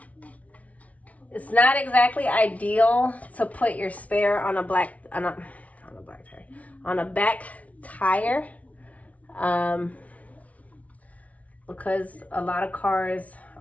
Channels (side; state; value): right; late; 0.068 ms